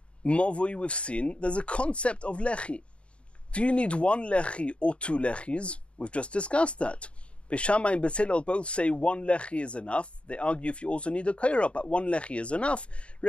mavoi we've seen, there's a concept of lechi. Do you need 1 lechi or 2 lechis? We've just discussed that. Beis Shammai and Beis Hillel both say 1 lechi is enough. They argue if you also need a koira, but 1 lechi is enough.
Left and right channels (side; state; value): right; late; 0.059 ms